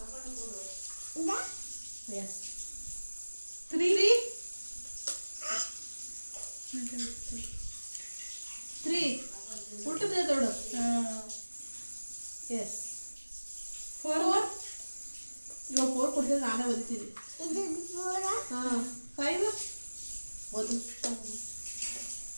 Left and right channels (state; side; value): inverted; both; correlation -1.00